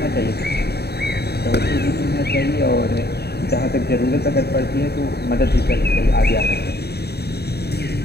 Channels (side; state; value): right; late; 0.47 ms